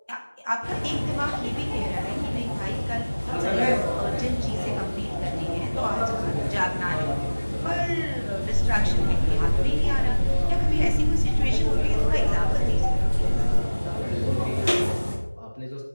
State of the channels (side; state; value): both; inverted; correlation -1.00